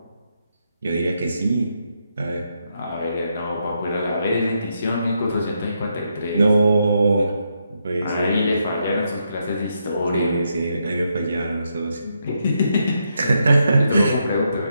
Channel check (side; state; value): both; inverted; correlation -0.80